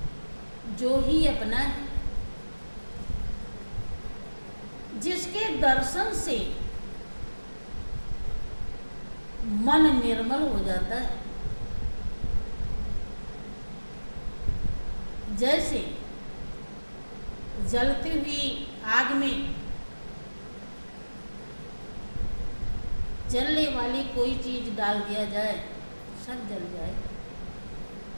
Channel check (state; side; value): inverted; both; correlation -1.00